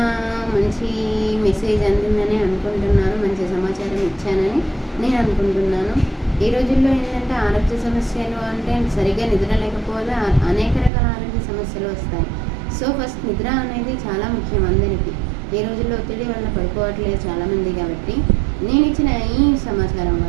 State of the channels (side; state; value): left; drops out; at 10.9 s